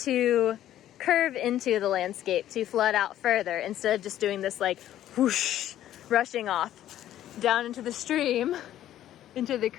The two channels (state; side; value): quieter; right; 12.3 dB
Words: curve into the landscape, to flood out further, instead of just doing this like whoosh, rushing off down into the stream, into the